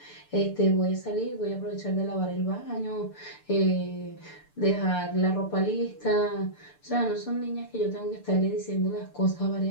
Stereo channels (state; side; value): late; right; 6.8 ms